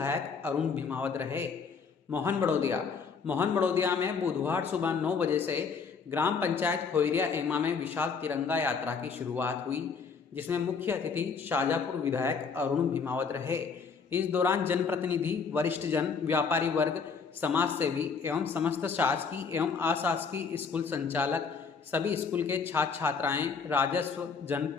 अरुण भीमावत रहे। मोहन बड़ौदिया में बुधवार सुबह 9 बजे से ग्राम पंचायत खोइरिया एमा में विशाल तिरंगा यात्रा की शुरुआत हुई, जिसमें मुख्य अतिथि शाजापुर विधायक अरुण भीमावत रहे। इस दौरान जनप्रतिनिधि, वरिष्ठ जन, व्यापारी वर्ग, समाज सेवी एवं समस्त शासकीय एवं अशासकीय स्कूल संचालक, सभी स्कूल के छात्र छात्राएं, राजस्व,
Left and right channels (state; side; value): quieter; right; 5.5 dB